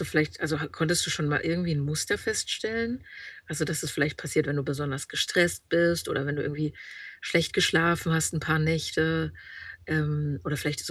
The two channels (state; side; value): identical; both; correlation 1.00